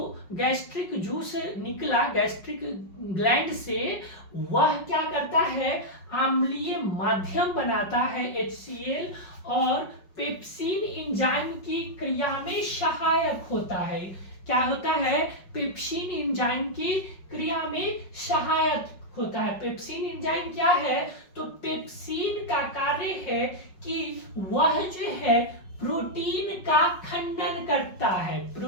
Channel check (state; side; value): late; right; 5.4 ms